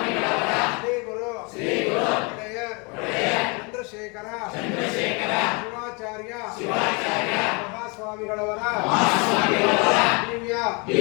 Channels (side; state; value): right; quieter; 30.8 dB